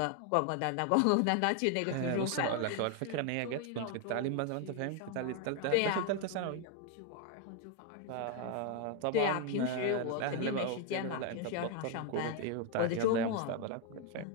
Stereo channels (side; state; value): both; different; correlation 0.01